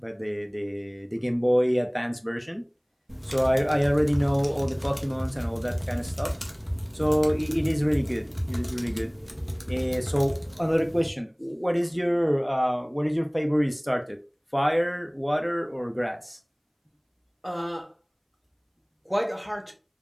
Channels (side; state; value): both; identical; correlation 1.00